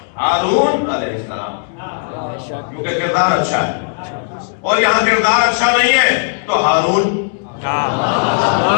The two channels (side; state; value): right; silent; digital silence